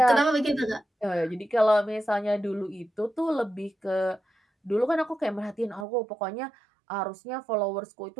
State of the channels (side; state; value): left; drops out; at 5.9 s